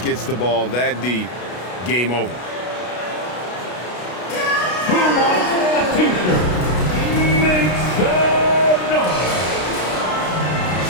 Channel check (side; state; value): right; late; 33 ms